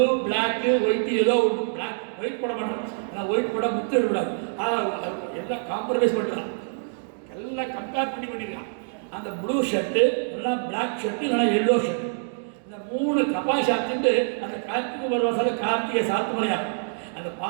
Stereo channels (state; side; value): silent; left; digital silence